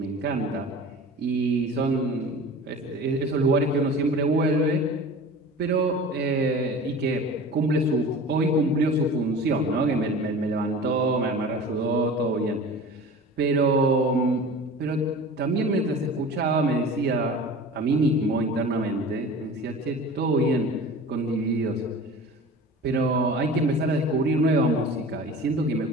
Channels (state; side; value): normal; both; correlation 0.38